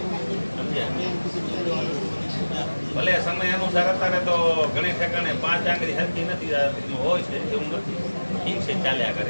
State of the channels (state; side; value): inverted; both; correlation -1.00